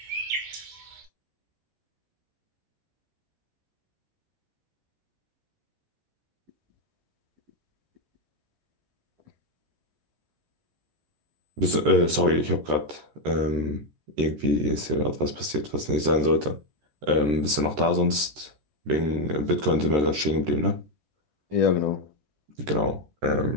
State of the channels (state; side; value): late; left; 13 ms